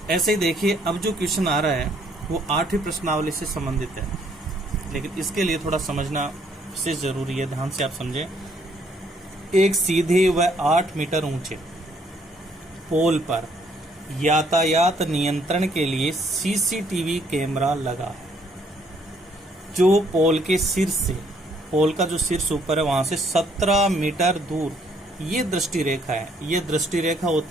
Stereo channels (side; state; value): both; normal; correlation 0.67